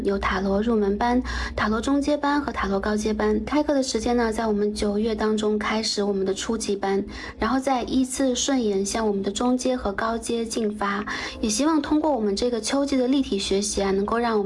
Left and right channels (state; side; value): identical; both; correlation 1.00